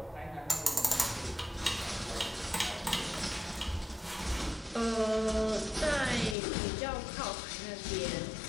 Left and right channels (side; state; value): right; drops out; at 6.4 s